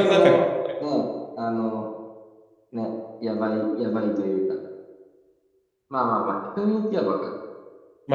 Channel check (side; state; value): both; identical; correlation 1.00